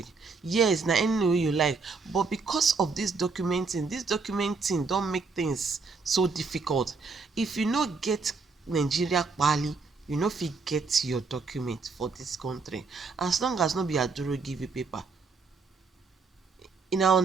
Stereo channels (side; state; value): left; quieter; 4.4 dB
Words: Yes, na any name wey you like, but because of this documenting don make things so difficult. If you no get Nigeria pali, you no fit get your document for this country, as long as no be Aduro give you paper. You now